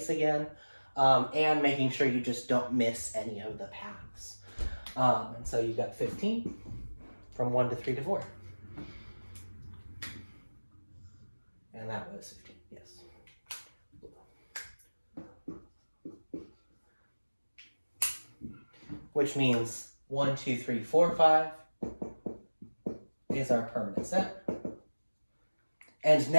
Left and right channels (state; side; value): inverted; both; correlation -1.00